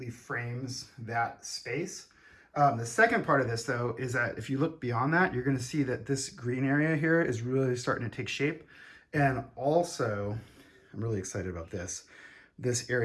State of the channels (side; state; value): both; identical; correlation 1.00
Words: frames that space. The second part of this, though, is that if you look beyond that, you're going to see that this green area here is really starting to take shape. And also, I'm really excited about this